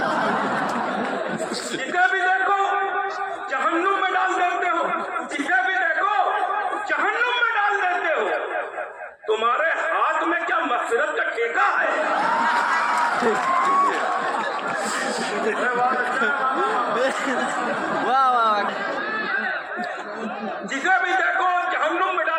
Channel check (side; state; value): both; identical; correlation 1.00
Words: जिसे भी देखो जहन्नुम में डाल देते हो, जिसे भी देखो जहन्नुम में डाल देते हो। तुम्हारे हाथ में क्या मगफिरत का ठेका है? वाह वाह। जिसे भी देखो जहन्नुम में